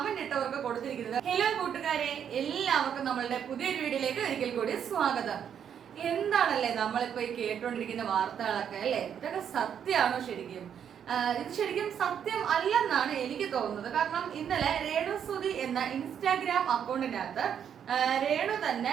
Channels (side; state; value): left; quieter; 8.5 dB